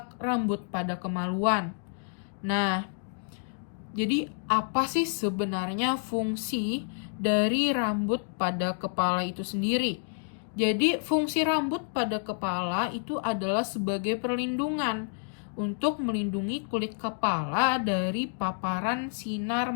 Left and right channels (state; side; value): silent; right; digital silence